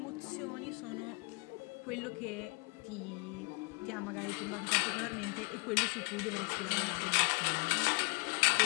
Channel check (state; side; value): quieter; right; 31.0 dB